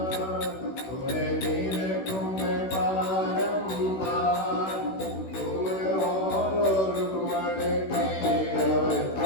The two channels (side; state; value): right; late; 16 ms